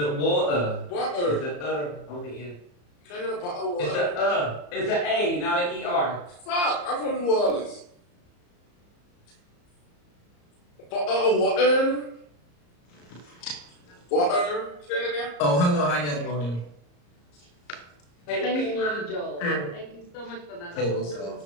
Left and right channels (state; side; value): late; right; 34 ms